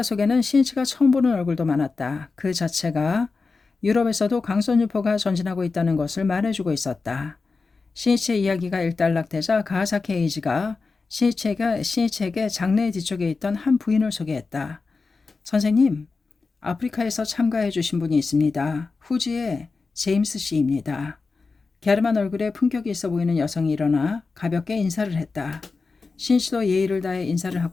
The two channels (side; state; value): right; quieter; 4.2 dB